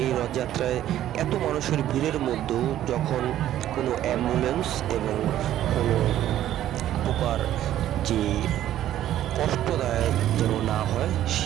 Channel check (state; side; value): quieter; left; 12.4 dB